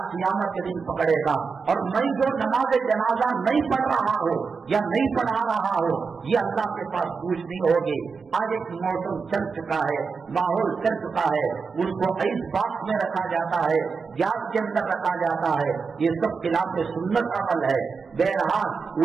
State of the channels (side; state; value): left; quieter; 5.1 dB